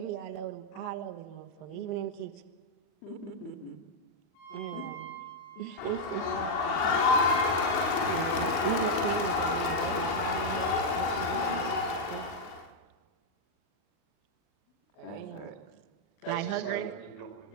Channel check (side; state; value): right; late; 40 ms